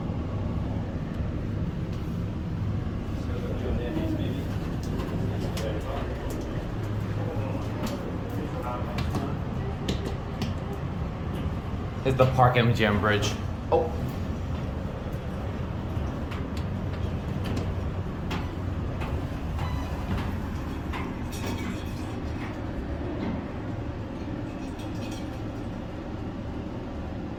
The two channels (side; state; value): both; identical; correlation 1.00